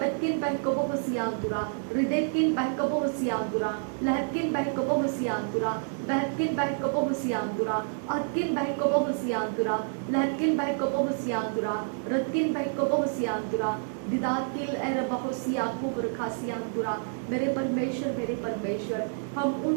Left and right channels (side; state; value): left; silent; digital silence